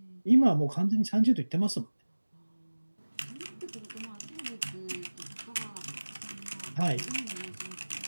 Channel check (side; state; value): both; inverted; correlation -1.00